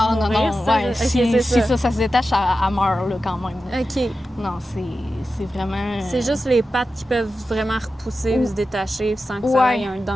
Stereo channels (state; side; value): normal; both; correlation 0.92